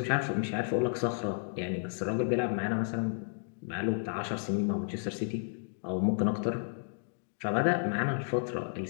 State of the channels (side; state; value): right; silent; digital silence